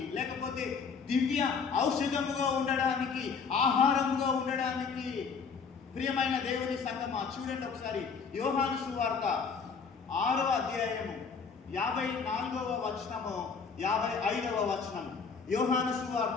లేకపోతే దివ్య ఔషధముగా ఉండడానికి, ఆహారముగా ఉండడానికి. ప్రియమైన దేవుని సంగమా, చూడండి ఒకసారి యోహాను సువార్త 6వ అధ్యాయము 54వ వచనము 55వ వచనం. యోహాను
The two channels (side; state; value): right; quieter; 5.6 dB